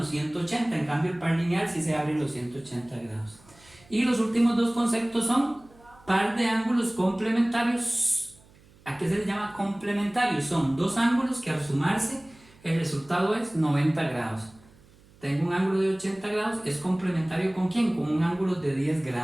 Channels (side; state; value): right; noise; hum, 27 dB below the sound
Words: 180, en cambio el par lineal sí se abre los 180 grados. Y los últimos dos conceptos son par de ángulos complementarios. ¿A qué se les llama complementarios? Son dos ángulos que al sumarse el resultado es 90 grados. Tengo un ángulo de 80 grados, es complementario ¿con quién? Con un ángulo de 10